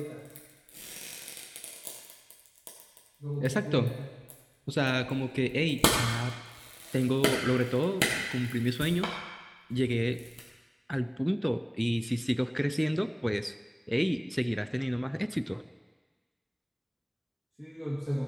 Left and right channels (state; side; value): identical; both; correlation 1.00